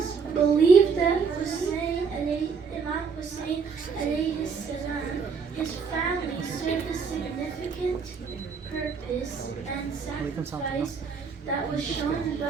believe that Imam Hussein alayhi salam, his family served a significant purpose and sacrifice that was shown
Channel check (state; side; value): quieter; left; 5.6 dB